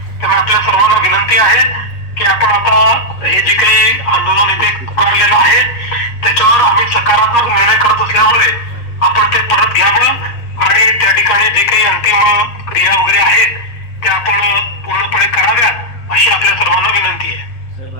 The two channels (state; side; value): late; right; 8.5 ms